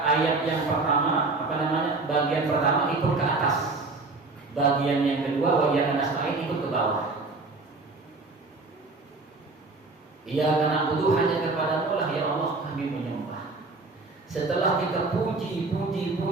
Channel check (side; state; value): left; quieter; 3.6 dB